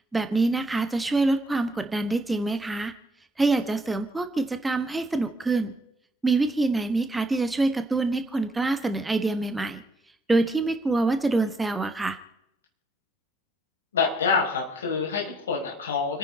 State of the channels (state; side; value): normal; both; correlation 0.70